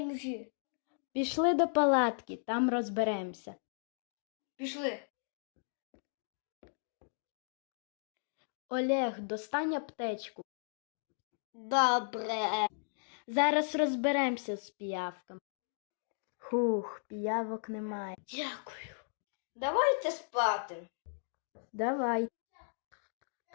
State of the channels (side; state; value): right; silent; digital silence